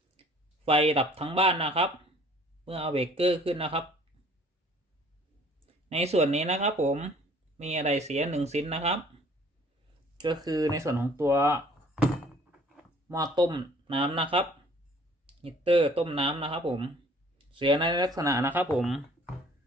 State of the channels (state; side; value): normal; both; correlation 0.55